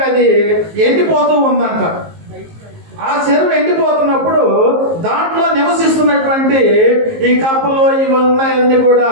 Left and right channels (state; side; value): late; left; 19 ms